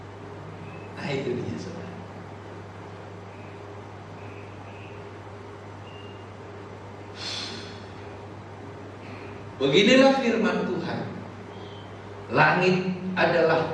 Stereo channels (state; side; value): identical; both; correlation 1.00